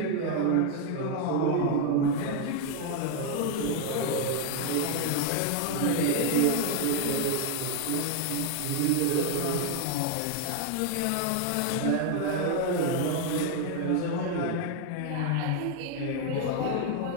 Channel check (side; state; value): both; different; correlation 0.00